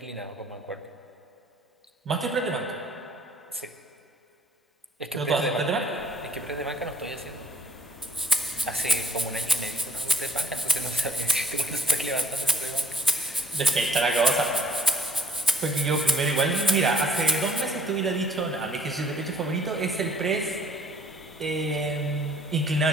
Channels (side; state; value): both; normal; correlation 0.59